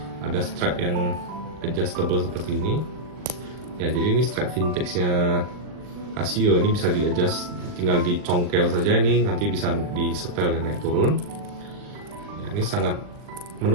Ada strap yang adjustable seperti ini ya. Jadi ini strap vintage-nya Casio, ini bisa di-adjust, tinggal dicongkel saja, ini nanti bisa disetel dan naik turun ya. Ini sangat,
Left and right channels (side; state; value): left; late; 39 ms